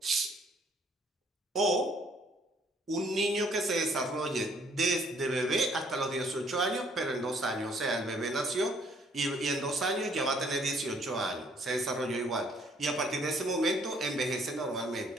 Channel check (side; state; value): both; normal; correlation 0.63